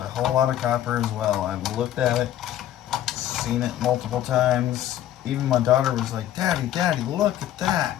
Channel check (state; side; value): quieter; right; 12.0 dB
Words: whole lot of copper as well. I've looked at it, seen it multiple times. Even my daughter was like, Daddy, Daddy, look at that.